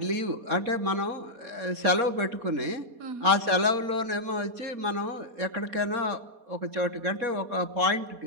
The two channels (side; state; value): left; late; 4.2 ms